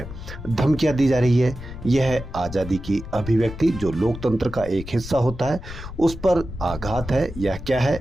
धमकियां दी जा रही है। यह है आज़ादी की अभिव्यक्ति जो लोकतंत्र का एक हिस्सा होता है, उस पर आघात है या क्या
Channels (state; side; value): noise; left; rumble, 12 dB below the sound